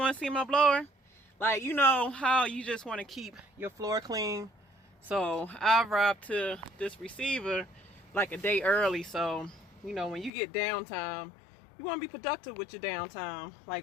to see my blower? Like, you know how you just want to keep your floor clean? So I arrived to this receiver like a day early, so you know when you get downtime, you want to be productive with your downtime.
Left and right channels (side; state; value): right; drops out; at 10.3 s